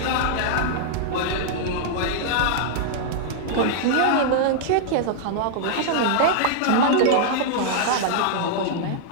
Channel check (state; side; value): different; both; correlation -0.01